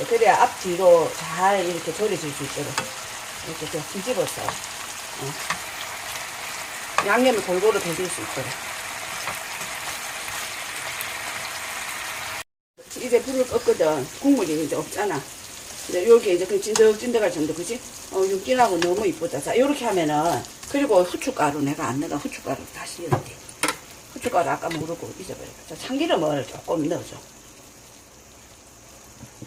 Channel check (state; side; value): identical; both; correlation 1.00